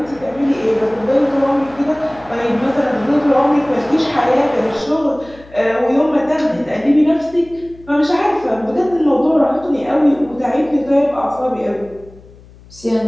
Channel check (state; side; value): noise; left; hum, 23 dB below the sound